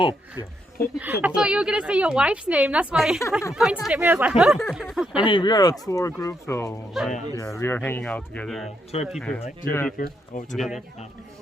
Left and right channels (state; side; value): normal; both; correlation 0.78